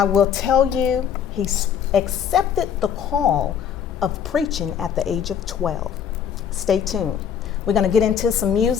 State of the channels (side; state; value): right; quieter; 8.2 dB